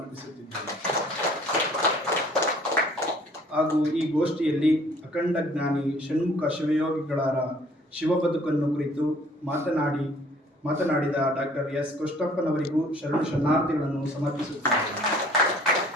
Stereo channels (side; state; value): both; normal; correlation 0.56